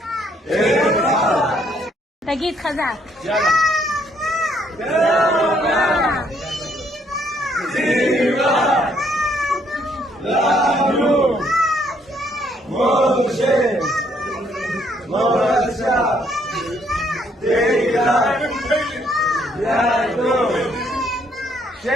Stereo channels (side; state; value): both; normal; correlation 0.69